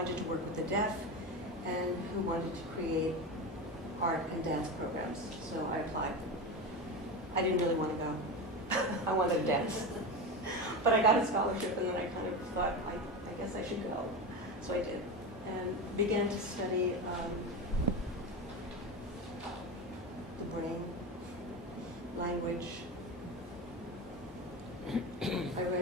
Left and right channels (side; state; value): both; normal; correlation 0.21